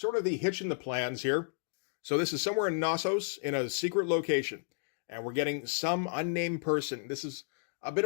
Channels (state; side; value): silent; right; digital silence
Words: of the hitch in the plans here. So this is somewhere in Knossos in a secret location. And we're getting some unnamed person. This is a bit